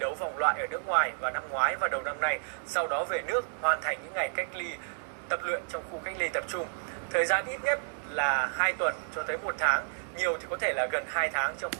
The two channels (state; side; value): silent; left; digital silence